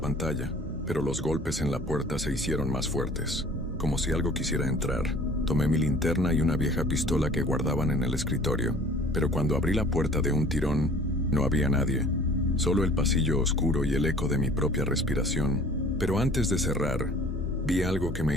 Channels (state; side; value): normal; both; correlation 0.50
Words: pero los golpes en la puerta se hicieron más fuertes, como si algo quisiera entrar. Tomé mi linterna y una vieja pistola que guardaban en el escritorio, pero cuando abrí la puerta de un tirón, No había nadie, solo el pasillo oscuro y el eco de mi propia respiración. Pero antes de cerrar, vi algo que